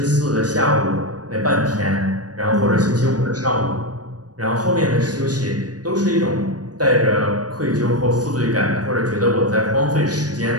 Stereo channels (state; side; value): late; left; 0.68 ms